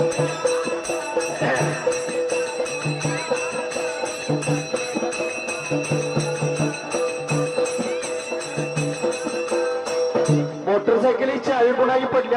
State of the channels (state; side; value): identical; both; correlation 1.00